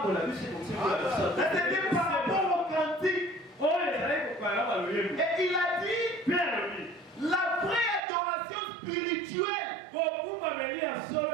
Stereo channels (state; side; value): drops out; left; at 8.0 s